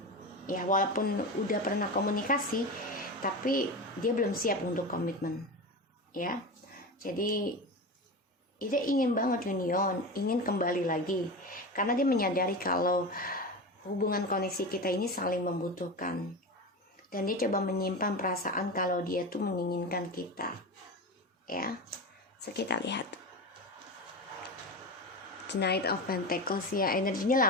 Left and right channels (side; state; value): both; normal; correlation 0.24